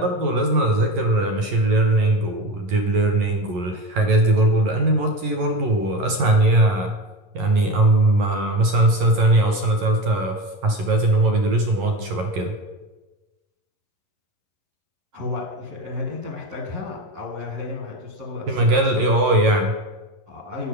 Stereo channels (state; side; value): late; left; 11 ms